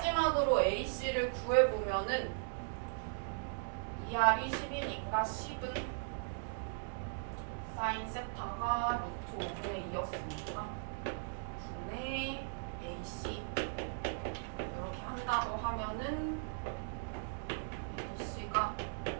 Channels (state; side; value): silent; left; digital silence